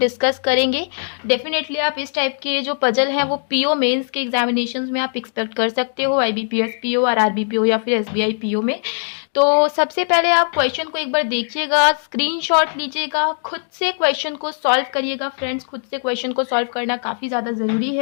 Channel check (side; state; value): right; silent; digital silence